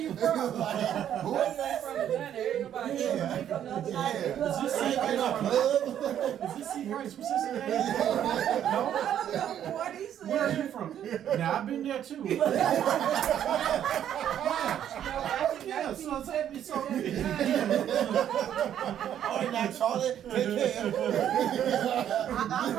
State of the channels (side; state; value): left; quieter; 10.2 dB